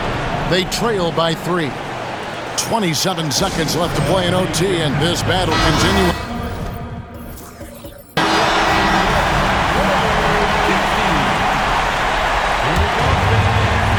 They trail by 3. 27 seconds left to play in OT, and this battle continues.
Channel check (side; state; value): both; identical; correlation 1.00